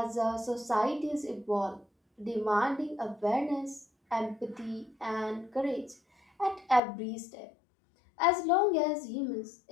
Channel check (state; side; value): drops out; right; at 6.8 s